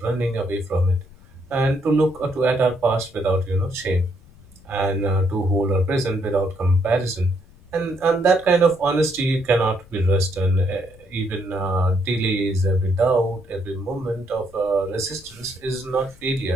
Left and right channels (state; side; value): noise; left; rumble, 24 dB below the sound